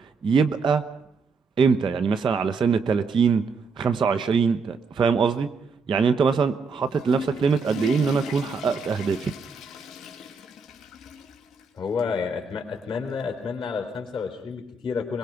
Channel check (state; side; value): quieter; left; 4.3 dB